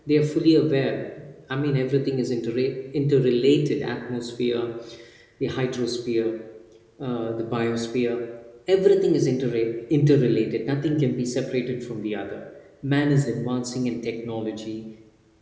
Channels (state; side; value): identical; both; correlation 1.00